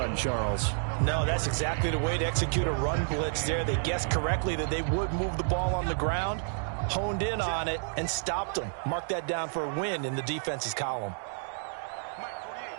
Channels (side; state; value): left; silent; digital silence